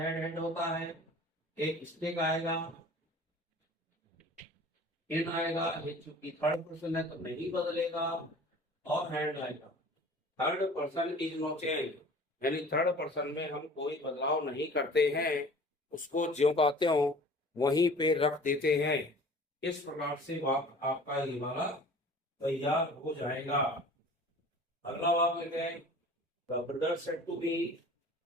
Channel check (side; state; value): both; normal; correlation 0.45